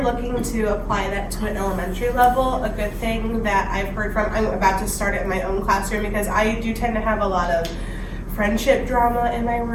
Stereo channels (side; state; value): both; identical; correlation 1.00